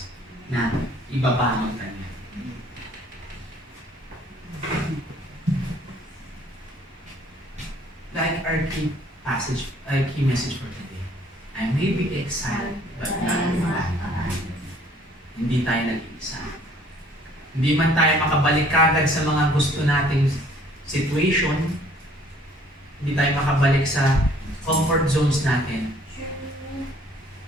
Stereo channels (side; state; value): both; normal; correlation 0.58